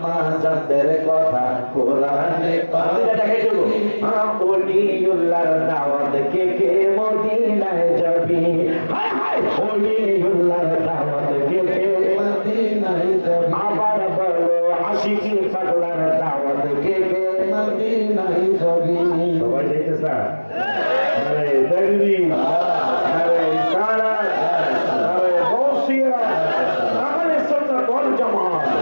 জানদের কথা কোরআনে পাবি। ওলিউল্লাহর দাওয়াত কে কে মদিনায় যাবি, হায় হায় ওলিউল্লাহর দাওয়াত কে কে মদিনায় যাবি। আবার বলো আশিকি পাগলার দাওয়াত কে কে মদিনায় যাবি। সবাই দেখতেছ? আরে তাকবীর, আরে ইশারাত, আরে গৌসিয়া, আহলে সুন্নাত ওয়াল জামাত,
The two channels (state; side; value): inverted; both; correlation -1.00